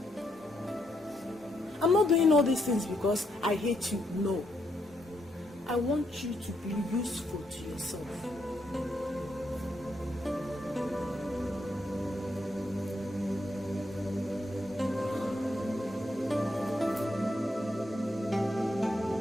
I'm not doing all these things because I hate you, no. I want you to be useful to yourself.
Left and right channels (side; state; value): both; normal; correlation 0.78